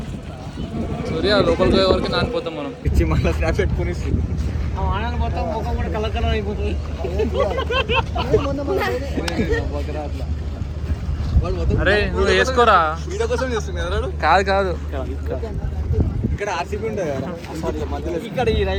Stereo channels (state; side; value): identical; both; correlation 1.00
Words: సూర్య లోపలికి పోయే వరకు నానిపోతాం మనం. పిచ్చి మళ్ళీ స్నాప్ పెట్టుకుని మొత్తం ముఖం కూడా కలర్ కలర్ అయిపోతుంది. అరే నువ్వు వేసుకోరా. వీడియో కోసం చేస్తున్నారు. కాదు కాదు, ఇక్కడ ఆర్సీబీ ఉంటుంది కదా మధ్యలో. ఇక్కడ ఈ